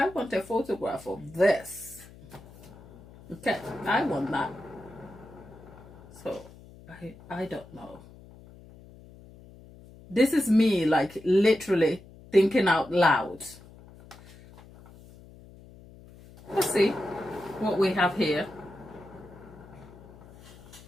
want a photograph of this. Okay, I want that. So, I don't know. This is me, like, literally thinking out loud. Let's see what we have here.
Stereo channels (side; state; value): left; noise; hum, 21 dB below the sound